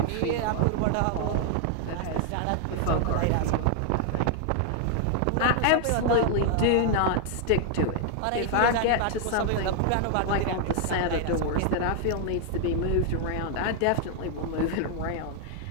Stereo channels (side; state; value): both; different; correlation 0.00